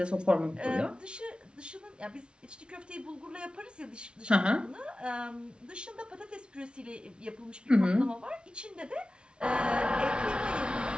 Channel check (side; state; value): left; late; 0.056 ms